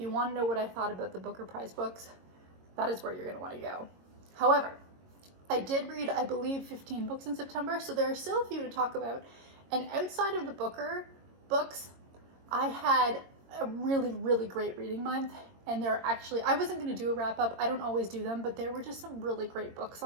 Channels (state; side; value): late; left; 22 ms